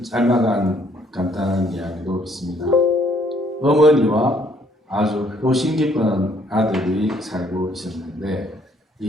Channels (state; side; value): normal; both; correlation 0.65